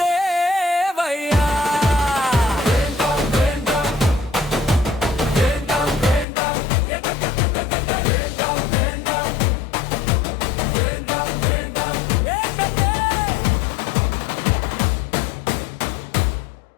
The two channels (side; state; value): right; drops out; at 6.2 s